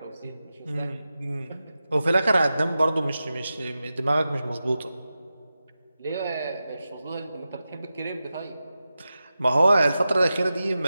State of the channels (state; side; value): inverted; both; correlation -0.92